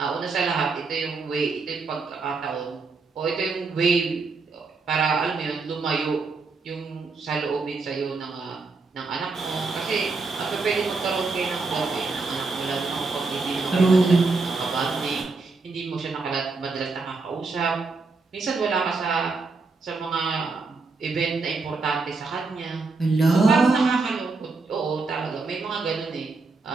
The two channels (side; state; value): left; quieter; 4.0 dB